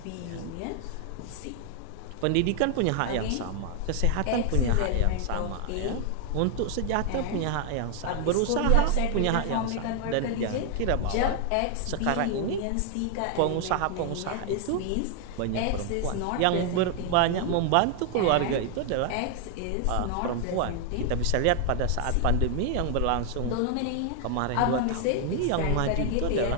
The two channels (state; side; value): different; both; correlation 0.00